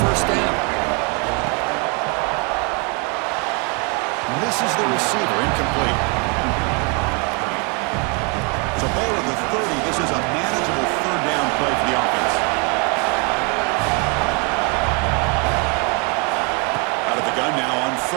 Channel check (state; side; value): quieter; left; 33.8 dB